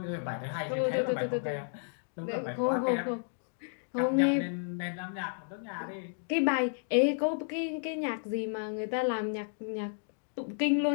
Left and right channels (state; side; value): silent; right; digital silence